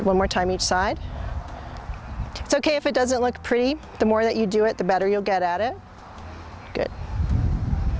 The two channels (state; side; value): identical; both; correlation 1.00